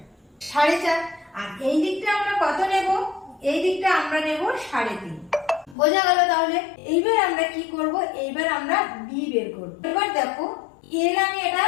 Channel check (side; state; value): right; drops out; at 5.8 s